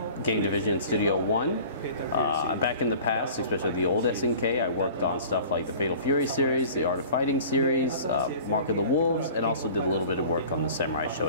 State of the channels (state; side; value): inverted; both; correlation -0.44